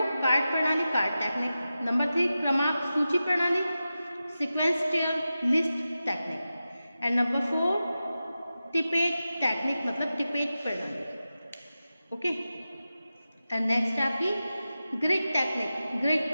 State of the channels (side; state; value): both; inverted; correlation -0.93